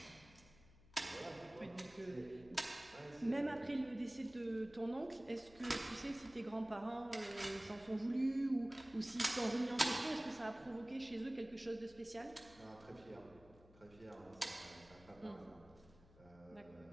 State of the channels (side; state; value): left; noise; hum, 23 dB below the sound